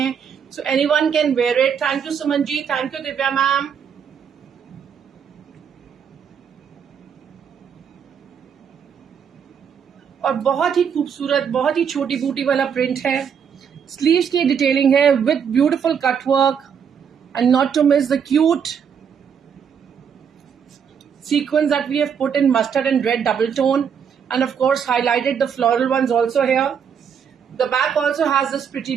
So anyone can wear it. Thank you Suman ji. Thank you Divya ma'am. और बहुत ही खूबसूरत बहुत ही छोटी बूटी वाला प्रिंट है. स्लीव्स की डिटेलिंग है with beautiful cutwork and not to miss the cute sequence that we have put in mustard and red double tone, and of course highlighted the floral ones also here. The back also has this pretty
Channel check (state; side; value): quieter; left; 7.4 dB